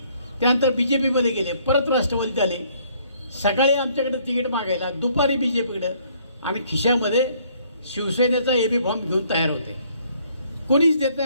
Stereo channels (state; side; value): inverted; both; correlation -0.64